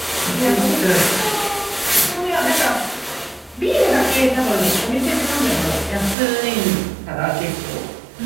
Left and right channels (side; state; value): left; drops out; at 6.2 s